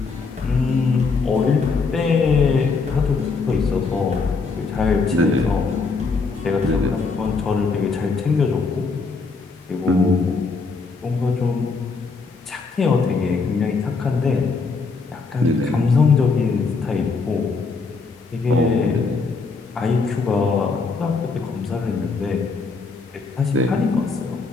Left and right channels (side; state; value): right; quieter; 4.4 dB